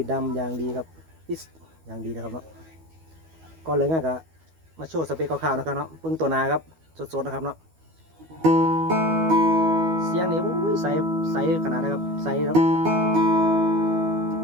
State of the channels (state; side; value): late; left; 12 ms